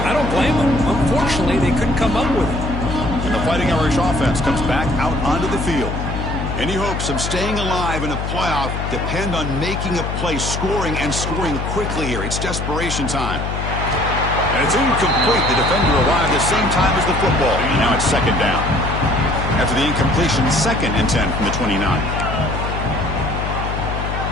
I don't blame them. Unfortunately, they couldn't come up with it. And the Fighting Irish offense comes back out onto the field. Any hopes of staying alive in a playoff depend on making a play, scoring, and scoring quickly here. It's desperation time. And it's incomplete. The defender arrived the same time as the football. And now it's 2nd down. After the incompletion, 2nd and 10 from the 29.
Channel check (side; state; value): left; noise; hum, 4 dB below the sound